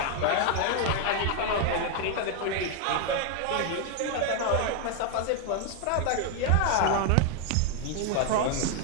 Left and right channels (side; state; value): both; different; correlation 0.01